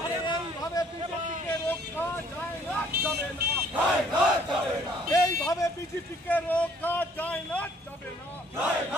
আরে এইভাবে বিজেপিকে রক্ষা যায় না, যাবে না। এইভাবে বিজেপিকে রক্ষা যায় না, যাবে না।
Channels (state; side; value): normal; both; correlation 0.60